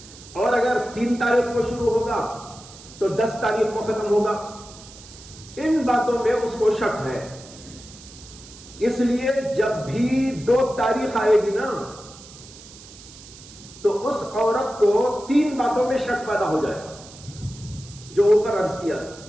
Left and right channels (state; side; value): noise; right; hiss, 19 dB below the sound